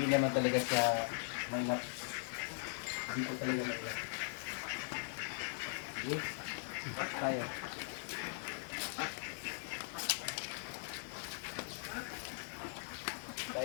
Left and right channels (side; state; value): right; silent; 51 dB below the other